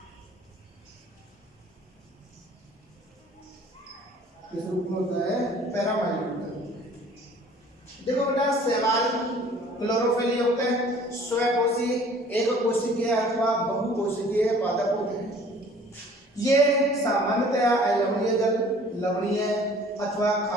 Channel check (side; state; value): both; normal; correlation 0.51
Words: किस रूप में होता है? पैरामाइलोन के रूप में। देखो बेटा, शैवाल क्लोरोफिल युक्त है, स्वकोशी, एक कोशिकीय अथवा बहुकोशिकीय पादप होते हैं। ये सामान्यतया अलवणीय जल, लवणीय अथवा